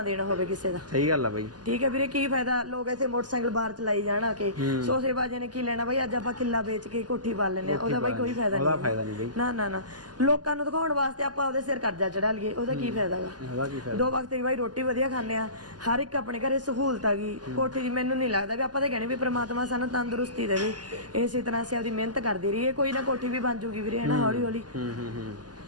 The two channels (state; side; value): late; left; 0.70 ms